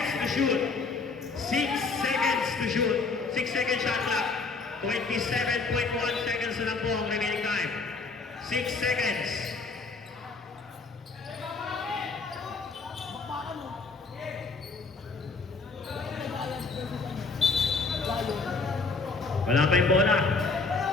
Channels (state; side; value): quieter; right; 4.2 dB